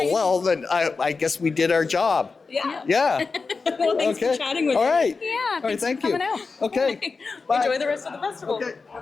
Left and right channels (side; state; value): right; quieter; 4.4 dB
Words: well, then I guess we did our job. Yeah. Well, thanks for chatting with All me. right. Yeah, All right, thanks thank for you. coming out. Okay. Bye. Enjoy the rest of the festival.